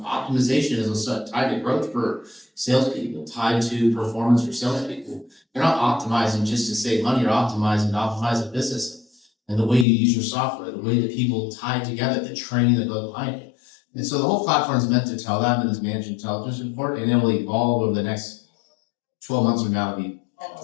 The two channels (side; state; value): right; drops out; at 9.9 s